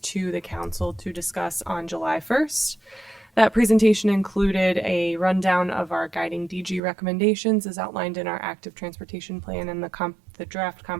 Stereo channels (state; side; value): drops out; left; at 6.8 s